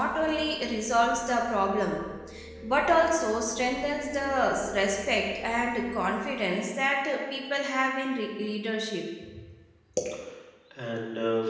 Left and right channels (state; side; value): identical; both; correlation 1.00